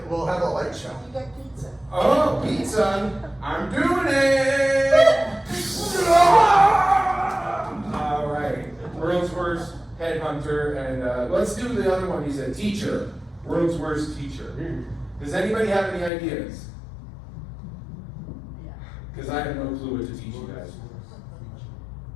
we'll have a light show. You get pizza. Oh, pizza. I'm doing it. All right. World's worst headhunter. And let's do the other one. He's a teacher. World's worst teacher. Does anybody have any ideas? Because I have no clue what to teach you guys.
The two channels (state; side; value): drops out; right; at 16.1 s